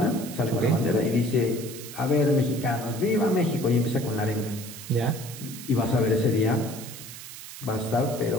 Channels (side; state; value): right; noise; hiss, 13 dB below the sound